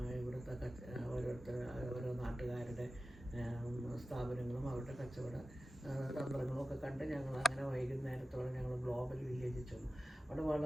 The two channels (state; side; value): normal; both; correlation 0.95